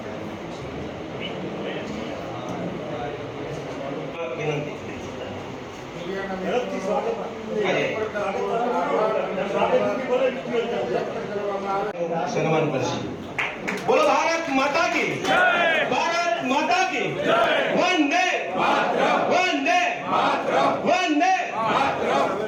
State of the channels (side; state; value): both; identical; correlation 1.00